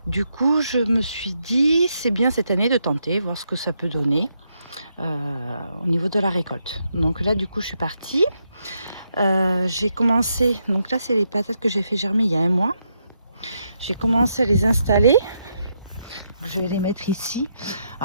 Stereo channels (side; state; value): both; inverted; correlation -0.80